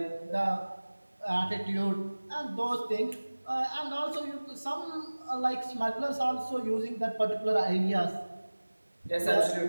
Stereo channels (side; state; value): both; inverted; correlation -1.00